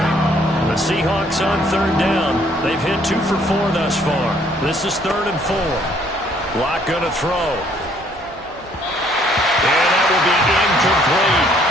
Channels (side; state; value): both; normal; correlation 0.63